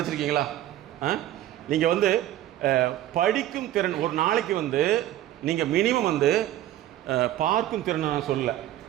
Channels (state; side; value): quieter; left; 13.3 dB